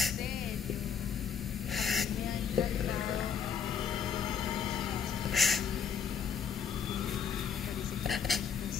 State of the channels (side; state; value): right; quieter; 6.9 dB